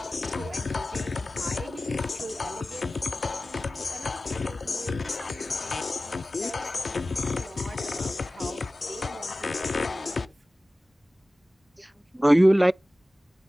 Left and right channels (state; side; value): normal; both; correlation 0.96